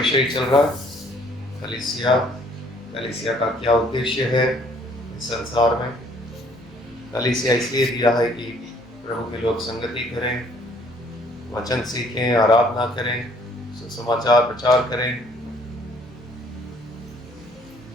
चल रहा है? कलीसिया। कलीसिया का क्या उद्देश्य है इस संसार में? कलीसिया इसलिए दिया है कि प्रभु के लोग संगति करें, वचन सीखें, आराधना करें, सुसमाचार प्रचार करें,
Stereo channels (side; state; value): both; normal; correlation 0.60